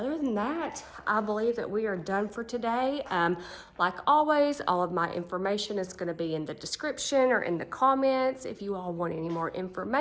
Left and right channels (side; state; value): both; identical; correlation 1.00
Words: than that, I believe that we are done for today. Like always, all of my information is gonna be in the description or in the comments. If you all want any more